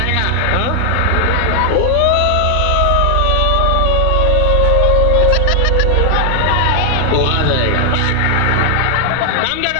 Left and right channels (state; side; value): different; both; correlation 0.00